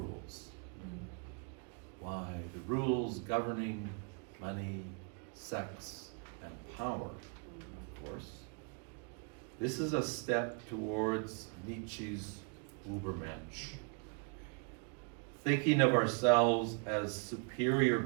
Why, the rules governing money, sex, and power, of course. This is a step towards Nietzsche's Übermensch. Thinking of ourselves as superior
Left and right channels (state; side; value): quieter; left; 37.1 dB